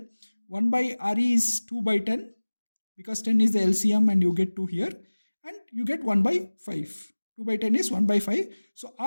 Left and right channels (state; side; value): inverted; both; correlation -1.00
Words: 1 by Re is 2 by 10 because 10 is the LCM and you get 2 here. And you get 1 by 5. 2 by 10 is 1 by 5. So